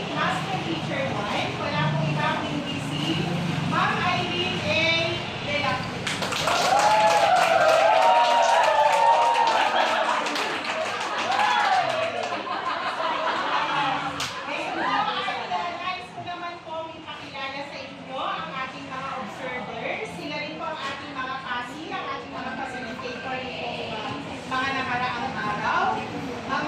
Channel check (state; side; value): identical; both; correlation 1.00